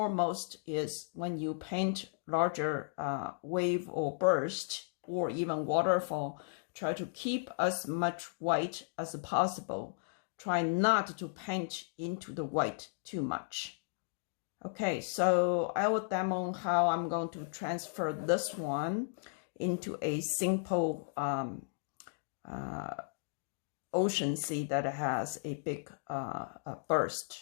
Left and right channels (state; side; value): silent; right; digital silence